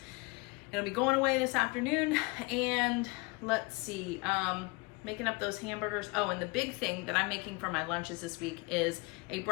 It'll be going away this afternoon. And let's see, making up those hamburgers. Oh, and the big thing that I'm making for my lunches this week is a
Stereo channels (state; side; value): quieter; right; 26.7 dB